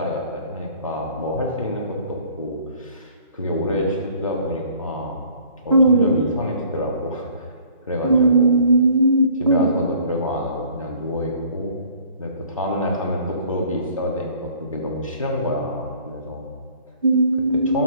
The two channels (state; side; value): inverted; both; correlation -0.55